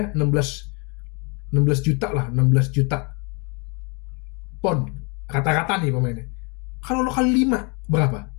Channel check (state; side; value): quieter; right; 32.5 dB